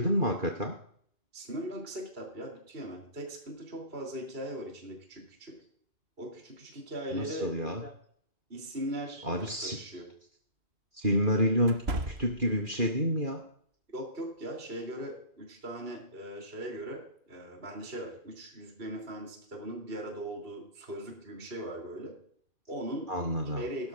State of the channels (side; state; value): left; late; 2.4 ms